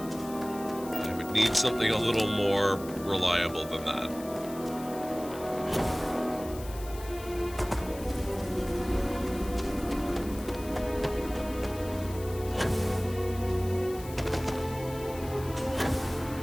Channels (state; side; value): noise; left; hiss, 16 dB below the sound